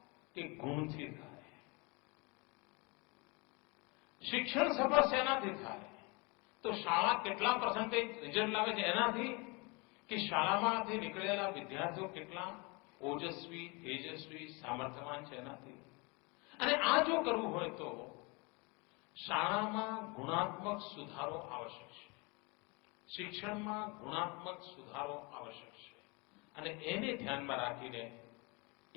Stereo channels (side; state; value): right; quieter; 28.8 dB